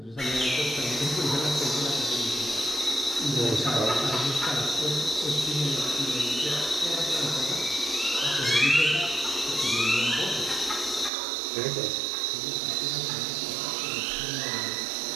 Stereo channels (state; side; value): drops out; left; at 11.1 s